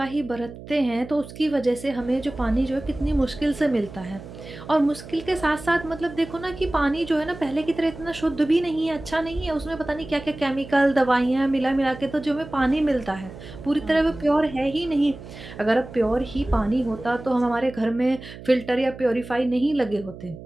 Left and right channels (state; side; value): noise; right; hum, 15 dB below the sound